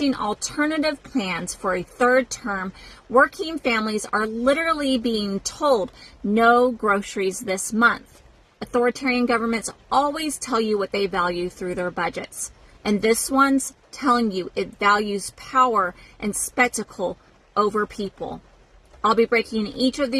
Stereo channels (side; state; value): both; identical; correlation 1.00